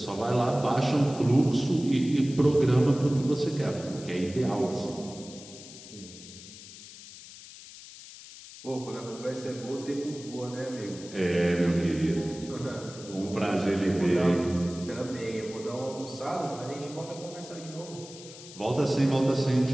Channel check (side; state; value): left; noise; hiss, 16 dB below the sound